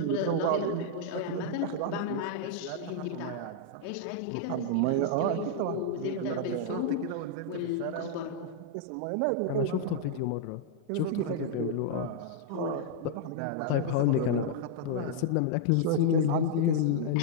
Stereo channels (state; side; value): different; both; correlation -0.01